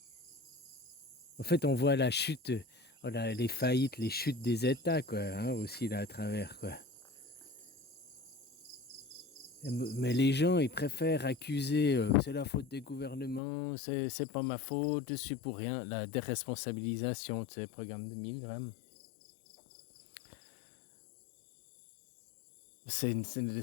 En fait, on voit la chute, les faillites, les chutes des États, quoi, hein, aussi là à travers, quoi. Mais les gens, ils préfèrent accuser, c'est la faute des gouvernements, c'est pas ma faute, je suis pour rien. La déresponsabilisation, tu sais, programme de Milgram. Je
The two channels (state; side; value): drops out; right; at 13.4 s